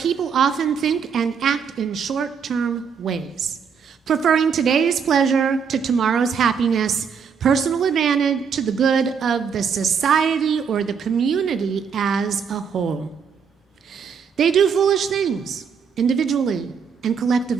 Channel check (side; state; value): left; quieter; 6.6 dB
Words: often think and act in short-term ways, preferring today's pleasure to tomorrow's happiness, personal advantage to the good of the society or the community as a whole. They do foolish things, individually and